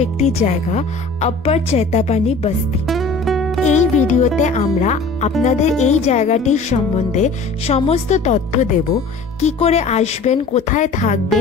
একটি জায়গা, আপ্পার চৈতাপানি বস্তি। এই ভিডিওতে আমরা আপনাদের এই জায়গাটির সম্বন্ধে সমস্ত তথ্য দেব। কি করে আসবেন, কোথায়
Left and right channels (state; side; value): quieter; right; 3.9 dB